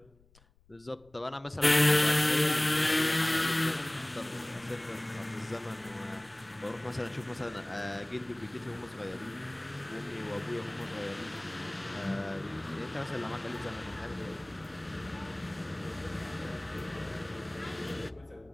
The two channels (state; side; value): noise; left; rumble, 29 dB below the sound